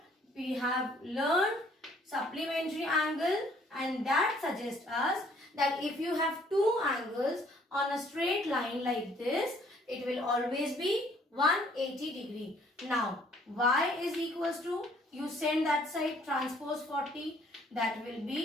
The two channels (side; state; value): both; normal; correlation 0.61